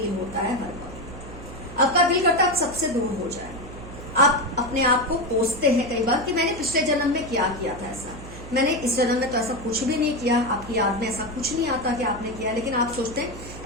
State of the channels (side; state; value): right; noise; hum, 14 dB below the sound